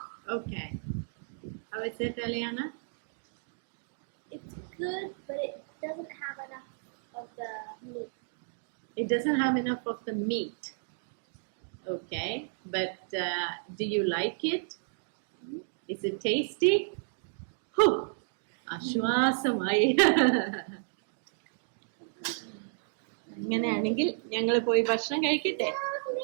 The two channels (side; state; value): left; silent; digital silence